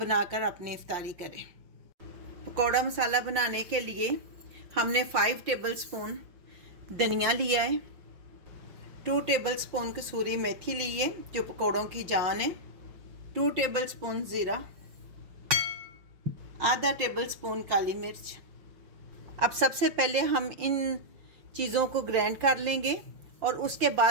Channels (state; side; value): late; left; 5.7 ms